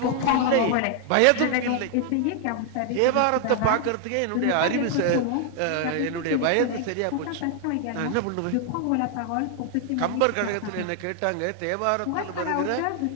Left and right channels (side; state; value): both; different; correlation 0.00